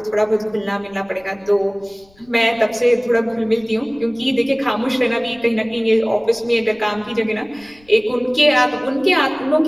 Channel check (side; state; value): left; noise; rumble, 30 dB below the sound